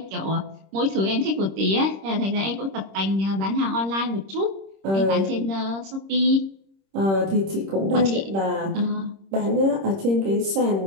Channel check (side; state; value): left; late; 26 ms